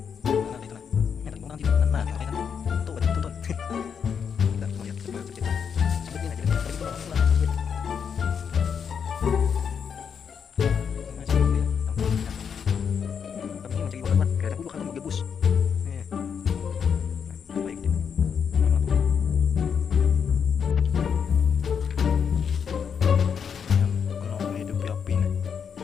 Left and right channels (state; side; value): quieter; right; 7.0 dB